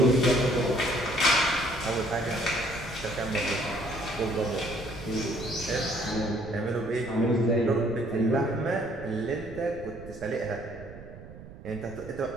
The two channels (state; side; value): noise; right; rumble, 16 dB below the sound